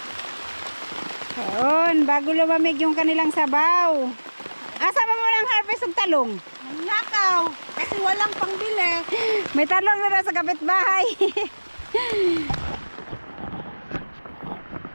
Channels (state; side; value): inverted; both; correlation -1.00